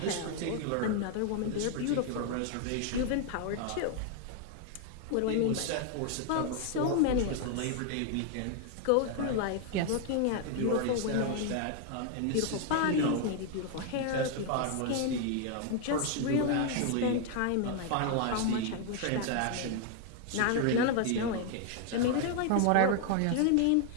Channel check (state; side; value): different; both; correlation 0.00